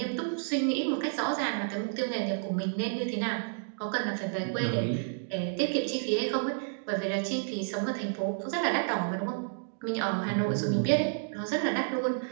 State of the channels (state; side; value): silent; left; digital silence